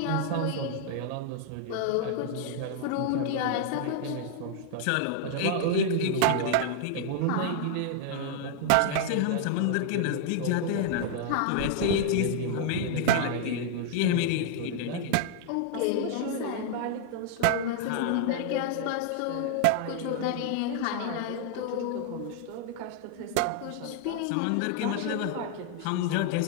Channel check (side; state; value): both; different; correlation 0.00